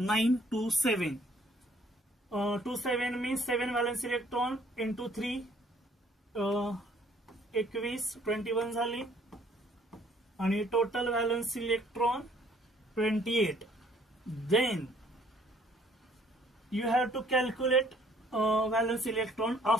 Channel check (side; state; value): both; normal; correlation 0.61